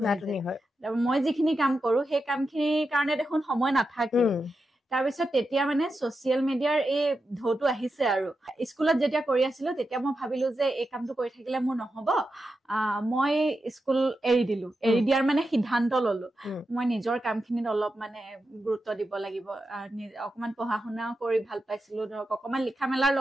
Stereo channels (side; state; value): both; normal; correlation 0.89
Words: হয় মই যিখিনি কাম কৰো সেই কামখিনিৰ কাৰণে দেখোন সময় নাথাকে তাৰপিছত তেতিয়া মানে ছচিয়েল মিডিয়াৰ এই ঢৌটো আহিছে আৰু স্কুলত যেতিয়া কৰি আছিলো তেতিয়া মই ভাবিলো যে এই কামটো কৰি থাকিলে মোৰ নহব মই স্কুল এৰি দিয়াৰ মানে সিদ্ধান্ত ললো মই নিজৰ কামখিনিত অলপ মানে গুৰুত্ব দিব লাগিব অকমান পঢ়া শুনাও কৰি ভাল পাইছিলো ধৰক অকমান লিখা মেলাৰ